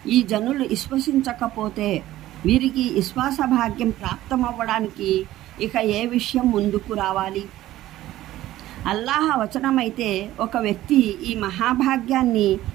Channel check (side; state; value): left; quieter; 14.8 dB